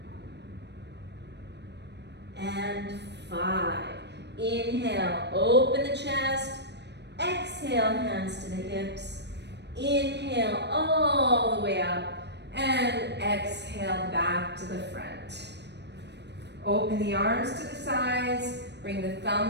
and 5. Inhale, open the chest. Exhale, hands to the hips. Inhale all the way up. And exhale back to the front. Open the arms to the sides. Bring the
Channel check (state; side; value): late; left; 0.50 ms